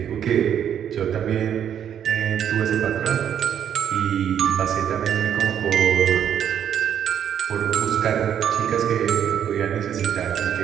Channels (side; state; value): left; quieter; 9.2 dB